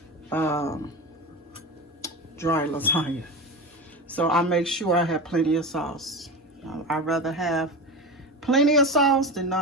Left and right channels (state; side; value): normal; both; correlation 0.25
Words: dry lasagna. So I make sure I have plenty of sauce. I'd rather have plenty of sauce than